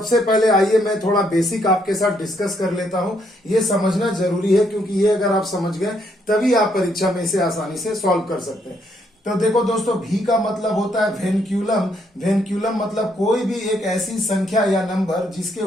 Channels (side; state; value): both; normal; correlation 0.73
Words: पहले आइए मैं थोड़ा बेसिक आपके साथ डिस्कस कर लेता हूं। ये समझना जरूरी है क्योंकि ये अगर आप समझ गए तभी आप परीक्षा में इसे आसानी से सॉल्व कर सकते हैं। तो देखो दोस्तों, भी का मतलब होता है वेनक्यूलम। वेनक्यूलम मतलब कोई भी एक ऐसी संख्या या नंबर जिसके